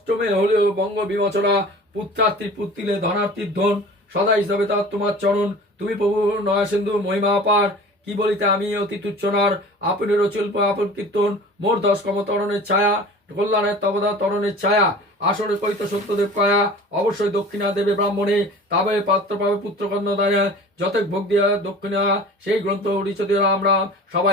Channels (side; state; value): both; normal; correlation 0.41